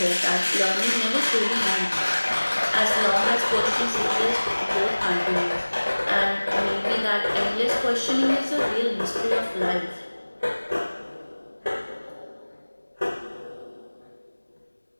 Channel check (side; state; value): both; inverted; correlation -1.00